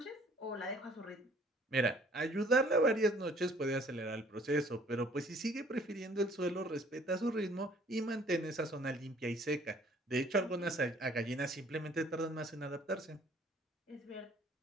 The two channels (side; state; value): both; normal; correlation 0.57